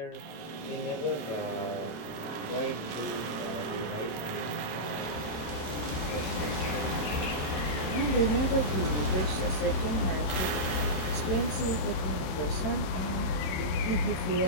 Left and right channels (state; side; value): late; right; 27 ms